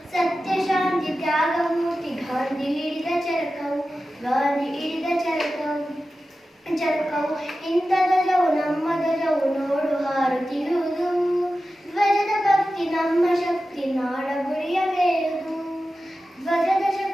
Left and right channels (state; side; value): normal; both; correlation 0.93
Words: ಸತ್ಯ ಶಾಂತಿ ತ್ಯಾಗ ಮೂರ್ತಿ ಗಾಂಧಿ ಹಿಡಿದ ಚರಕವು, ಗಾಂಧಿ ಹಿಡಿದ ಚರಕವು. ಇಂಥ ಧ್ವಜವು ನಮ್ಮ ಧ್ವಜವು ನೋಡು ಹಾರುತ್ತಿರುವುದು, ಧ್ವಜದ ಭಕ್ತಿ ನಮ್ಮ ಶಕ್ತಿ ನಾಡ ಗುರಿಯ ಮೇಯುವುದು, ಧ್ವಜದ